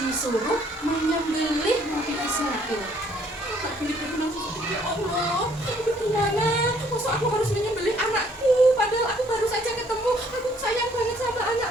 disuruh menyembelih Nabi Ismail. Nabi Ibrahim langsung sedih, ya Allah, gimana? Masa aku harus menyembelih anakku? Padahal aku baru saja ketemu. Aku sayang banget sama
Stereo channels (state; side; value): normal; both; correlation 0.63